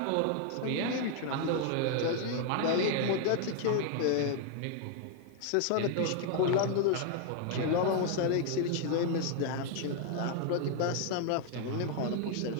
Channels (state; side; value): different; both; correlation 0.00